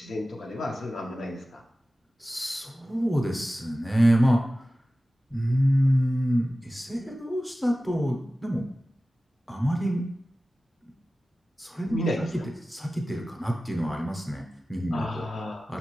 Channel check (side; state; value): both; normal; correlation 0.96